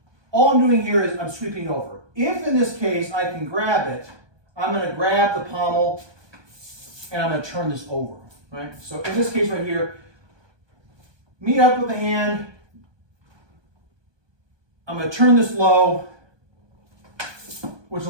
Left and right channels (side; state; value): left; late; 1.2 ms